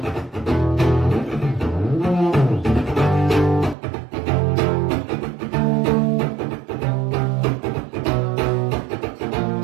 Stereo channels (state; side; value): drops out; left; at 3.8 s